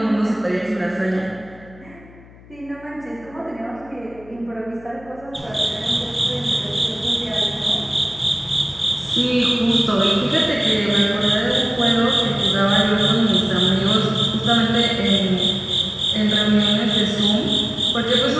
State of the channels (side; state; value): left; noise; hum, 23 dB below the sound